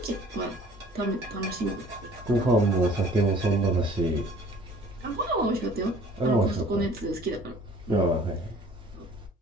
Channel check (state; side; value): normal; both; correlation 0.51